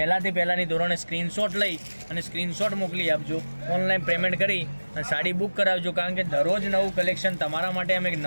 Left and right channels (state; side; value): inverted; both; correlation -1.00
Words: પહેલાંની ધોરણે સ્ક્રીનશોટ લઈ અને સ્ક્રીનશોટ મોકલી આપજો. ઓનલાઈન પેમેન્ટ કરી અને સાડી બુક કરાવજો, કારણ કે દરરોજ નવું કલેક્શન તમારા માટે અમે